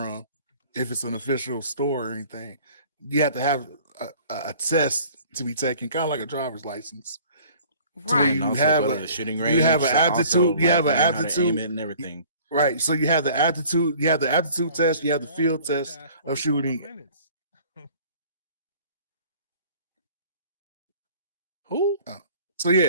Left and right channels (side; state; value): both; inverted; correlation -0.51